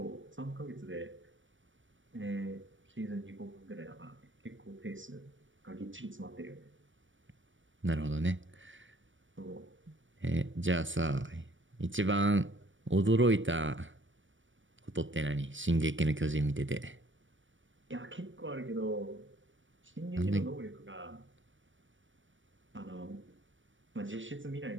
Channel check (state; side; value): late; left; 0.56 ms